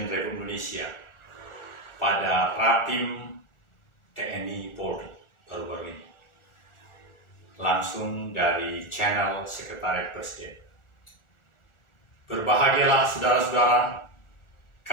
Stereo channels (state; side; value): late; right; 1.4 ms